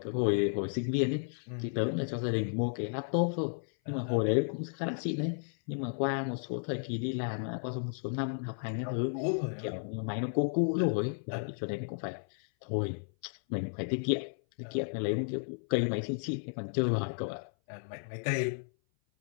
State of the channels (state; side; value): silent; right; 56 dB below the other